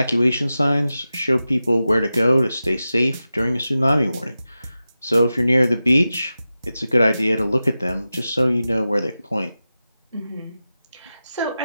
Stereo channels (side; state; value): both; inverted; correlation -0.93